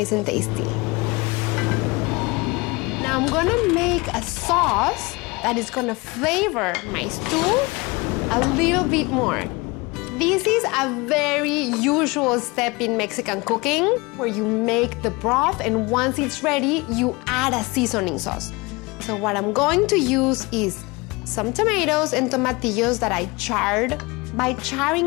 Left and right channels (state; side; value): quieter; right; 25.0 dB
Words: and tasty. Now I'm gonna make a sauce that is gonna flavor my stew a little bit more. This is a very usual step in Mexican cooking where you make the broth and once it's ready, you add a seasoning sauce. So what I'm going to use is some tomatoes and tomatillos that I charred. By